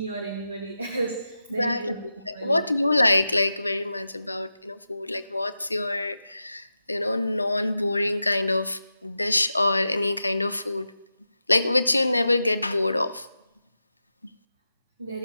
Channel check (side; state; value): both; inverted; correlation -0.91